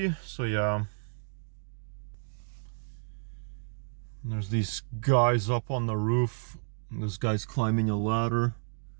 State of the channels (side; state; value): left; silent; digital silence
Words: so yeah. There's these guys up on the roof. This guy's climbing a ladder.